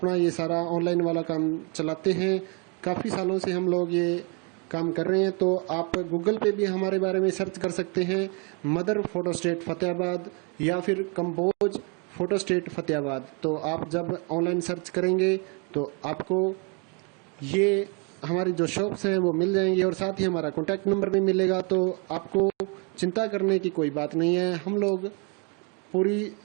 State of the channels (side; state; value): left; quieter; 34.6 dB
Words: ये सारा ऑनलाइन वाला काम चलाते हैं। काफ़ी सालों से हम लोग ये काम कर रहे हैं। तो आप गूगल पे भी हमारे बारे में सर्च कर सकते हैं, मदर फोटो स्टेट फतेहाबाद या फिर कंपोज फोटो स्टेट फतेहाबाद। तो आप जब ऑनलाइन सर्च करेंगे तो आपको ये हमारी जो शॉप्स हैं वो मिल जाएंगी और साथ ही हमारा कॉन्टैक्ट नंबर भी मिलेगा। तो आपको चिंता करने की कोई बात नहीं है। हम लोग पूरी